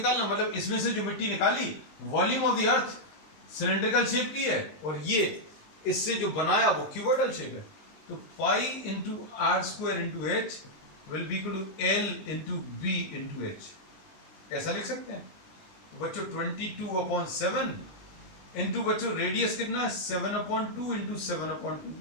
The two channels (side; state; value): right; late; 19 ms